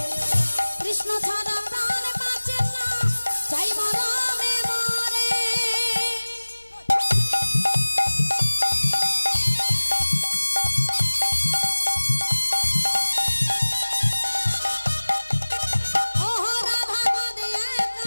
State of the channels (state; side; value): inverted; both; correlation -1.00